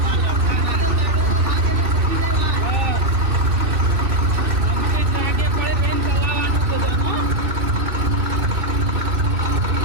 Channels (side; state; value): left; late; 2.7 ms